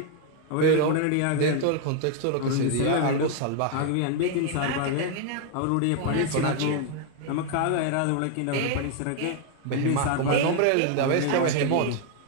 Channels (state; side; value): different; both; correlation 0.00